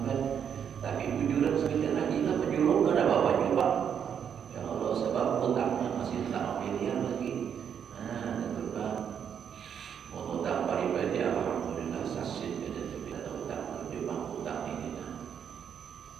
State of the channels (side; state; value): left; quieter; 8.1 dB